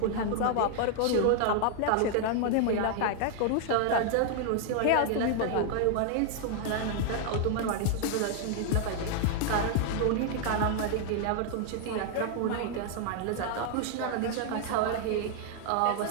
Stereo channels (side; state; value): both; different; correlation 0.00